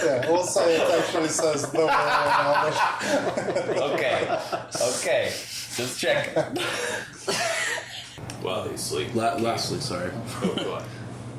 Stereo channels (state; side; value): identical; both; correlation 1.00